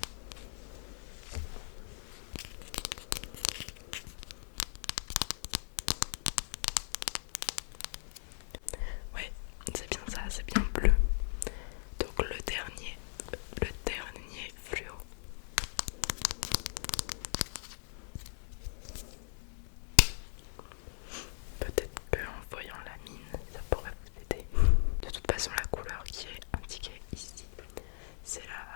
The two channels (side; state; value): right; silent; 53 dB below the other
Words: Ouais, c'est bien ça, c'est bien bleu. Donc le dernier fluo. Peut-être qu'en voyant la mine, ça pourrait vous aider. De toute façon, la couleur qui est indiquée ici, c'est